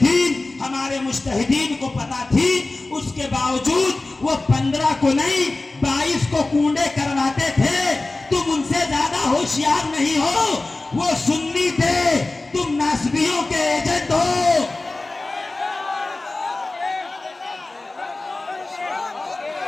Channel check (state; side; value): quieter; right; 3.1 dB